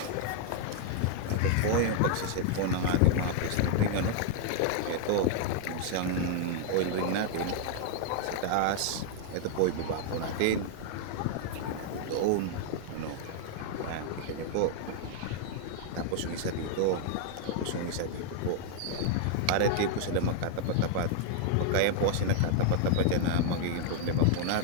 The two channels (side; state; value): both; different; correlation -0.01